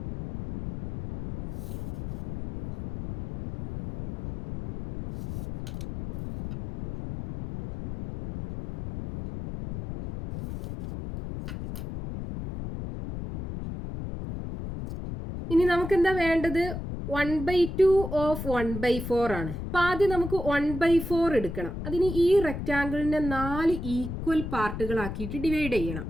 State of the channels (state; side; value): noise; left; rumble, 7 dB below the sound